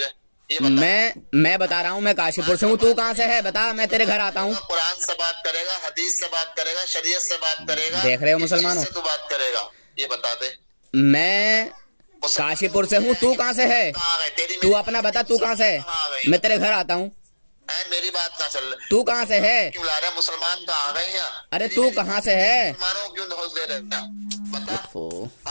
मैं बता रहा हूँ, मैं काशीपुर से हूँ, तू कहाँ से है बता, मैं तेरे घर आता हूँ। कुरान से बात करेगा, हदीस से बात करेगा, शरीयत से बात करेगा। देख रहे हो मुसलमानों, तू बात करेगा, ये बता दे। मैं काशीपुर से हूँ, तू कहाँ से है? तू अपना बता, तू कहाँ से है? मैं तेरे घर आता हूँ। मेरी बात ना चल, तू कहाँ से है? क्यों ला रहा है? मुसलमान कहाँ आ गए हैं? अरे तू कहाँ से है? मुसलमानों क्यों धोस दे रहे हैं? बता।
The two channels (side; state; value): both; inverted; correlation -1.00